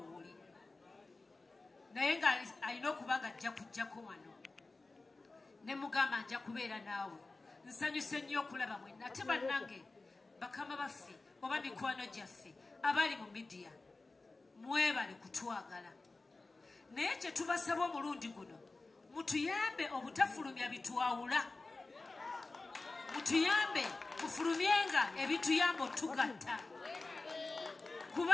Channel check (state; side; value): quieter; right; 3.5 dB